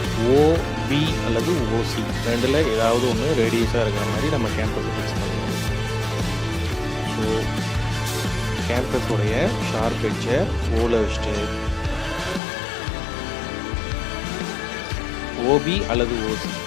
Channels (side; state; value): right; drops out; at 12.4 s